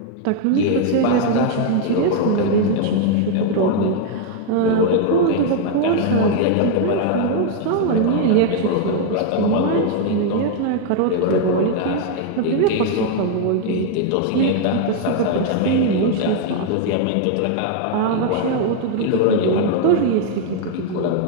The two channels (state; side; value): different; both; correlation 0.00